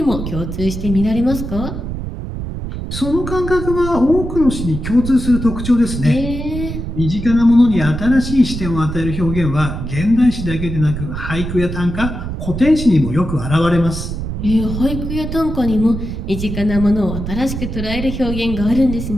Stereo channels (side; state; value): right; noise; rumble, 6 dB below the sound